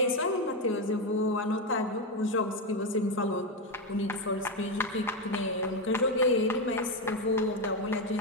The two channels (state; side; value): normal; both; correlation 0.09